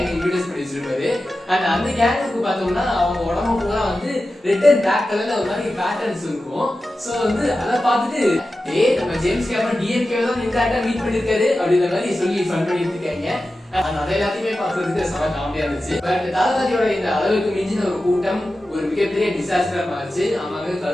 இன்ட்ரோடியூஸ் பண்ணி வச்சிருப்பாரு. அண்ட் அந்த கேங்குக்கு பார்த்தோம்னா அவங்க உடம்பு பூரா வந்து ரெட் அண்ட் பிளாக் கலர்ல ஒரு மாதிரி பேட்டர்ன்ஸ் இருக்கும். சோ வந்து அதை பார்த்துட்டு நம்ம ஜேம்ஸ் கேமரன் டிஎம்கே தான் இன்டராக்டா மீட் பண்ணிருக்காரு அப்படின்ற மாதிரி சொல்லி ஃபன் பண்ணிட்டு இருக்காங்க. அது எல்லாத்தையுமே பார்க்கறதுக்கு செம காமெடியா இருந்துச்சு. பட் தளபதியோட இந்த அளவுக்கு மிஞ்சின ஒரு கூட்டம் ஒரு மிகப்பெரிய டிசாஸ்டரா மாறிச்சு. ஆமாங்க,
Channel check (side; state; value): both; normal; correlation 0.93